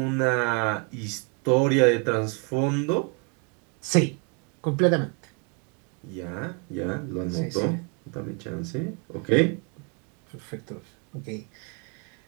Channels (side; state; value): left; quieter; 34.0 dB